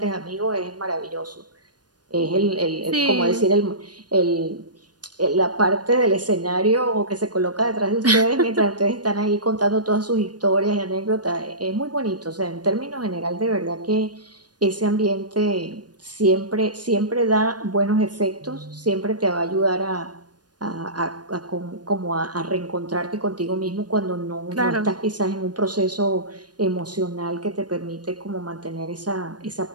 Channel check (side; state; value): left; late; 0.69 ms